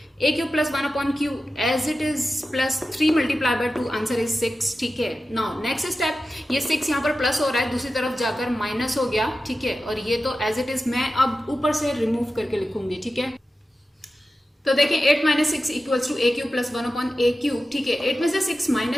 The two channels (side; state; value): both; normal; correlation 0.93